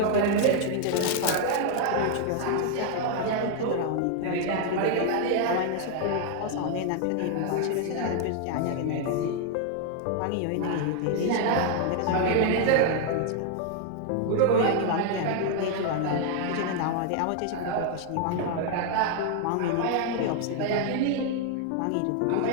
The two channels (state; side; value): different; both; correlation 0.00